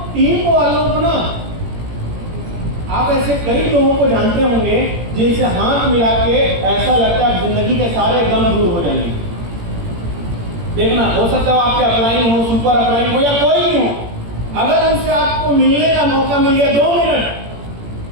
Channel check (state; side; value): late; left; 17 ms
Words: टीम वालों को ना, आप ऐसे कई लोगों को जानते होंगे जिनसे हाथ मिला के ऐसा लगता है जिंदगी के सारे गम दूर हो जाएंगे। देखना, हो सकता है आपके अपलाइन हो, सुपर अपलाइन हो या कोई भी हो, अगर उनसे आपको मिलने का मौका मिल गया 2 मिनट,